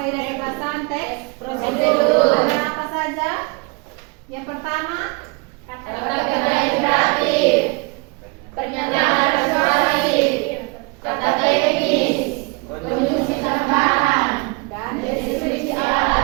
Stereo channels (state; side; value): quieter; left; 29.0 dB